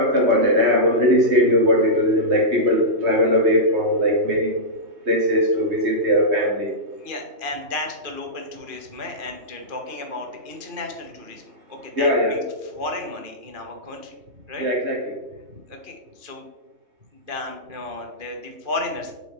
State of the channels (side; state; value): left; late; 2.5 ms